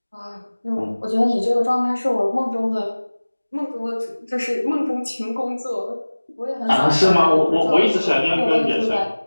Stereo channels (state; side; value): inverted; both; correlation -1.00